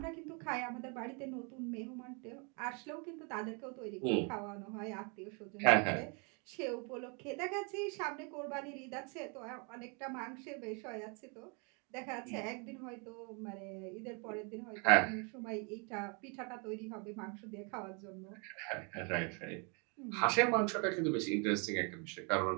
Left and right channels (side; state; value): left; quieter; 34.5 dB